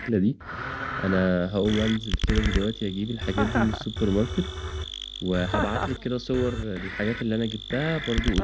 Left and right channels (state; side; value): identical; both; correlation 1.00